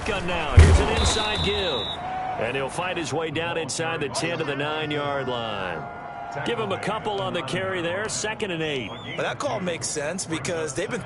now, here's an inside give. And he'll fight his way down inside the 10 to the 9-yard line. Give him a couple on the carry there, 2nd and 8. Well, that call makes sense because they've been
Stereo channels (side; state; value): both; identical; correlation 1.00